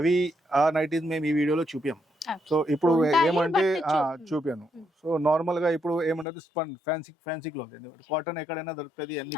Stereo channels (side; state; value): right; drops out; at 6.2 s